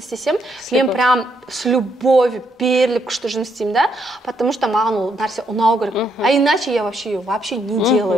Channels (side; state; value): both; normal; correlation 0.75